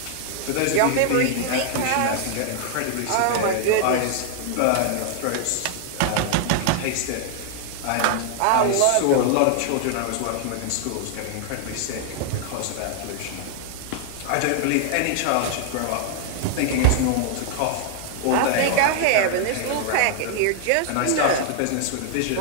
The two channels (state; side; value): different; both; correlation 0.00